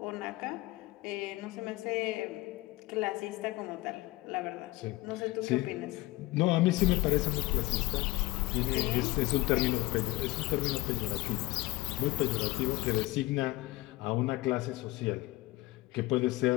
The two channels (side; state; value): right; quieter; 20.0 dB